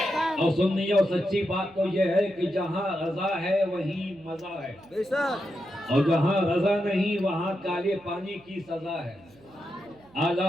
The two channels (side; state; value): right; noise; hum, 27 dB below the sound